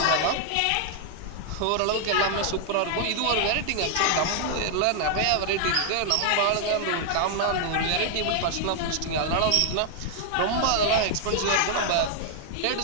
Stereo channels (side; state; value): both; different; correlation 0.00